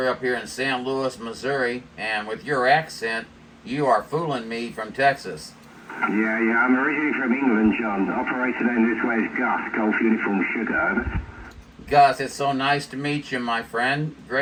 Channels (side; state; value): both; identical; correlation 1.00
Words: up here in St. Louis, Missouri, and with your accent, you are fooling me from Texas. Yeah, I'm originally from England, John. Operator down this way is Gus, Golf Uniform Sugar, over. Gus, it's so nice to meet you, my friend.